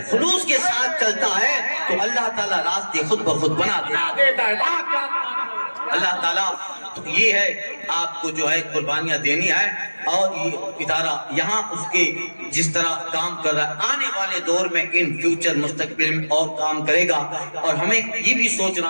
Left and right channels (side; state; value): both; inverted; correlation -1.00